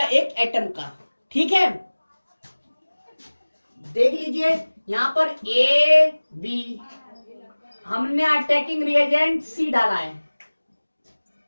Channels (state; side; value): inverted; both; correlation -1.00